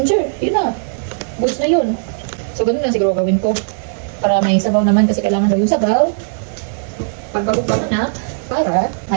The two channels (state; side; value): silent; left; digital silence